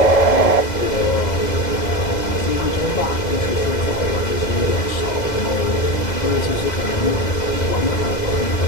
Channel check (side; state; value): right; late; 2.0 ms